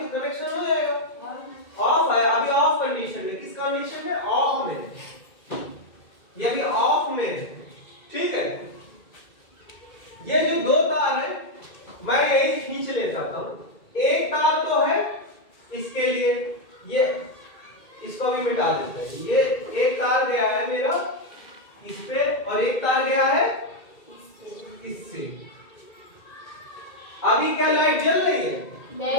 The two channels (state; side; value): late; right; 2.2 ms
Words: कनेक्शन हो जाएगा। ऑफ है, अभी ऑफ कंडीशन में, किस कंडीशन में? ऑफ में, ये अभी ऑफ में है, ठीक है? ये जो दो तार है मैं एक खींच ले जाता हूं, एक तार तो है इसके लिए, ये इसको भी मिटा देते हैं। ये एक तार गया है मेरा इस पे और एक तार गया है इससे। अभी क्या लाइट जल रही है?